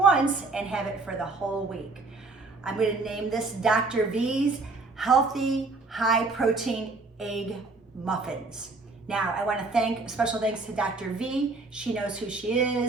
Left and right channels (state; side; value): quieter; left; 3.6 dB